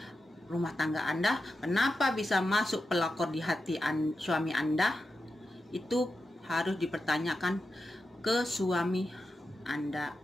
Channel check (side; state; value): both; normal; correlation 0.90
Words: rumah tangga Anda? Kenapa bisa masuk pelakor di hati suami Anda? Itu harus dipertanyakan ke suami Anda.